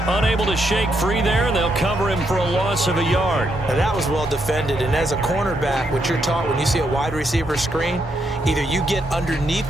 unable to shake free there, and they'll cover him for a loss of a yard. Now that was well defended, and as a cornerback, what you're taught when you see a wide receiver screen, either you get underneath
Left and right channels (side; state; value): both; normal; correlation 0.78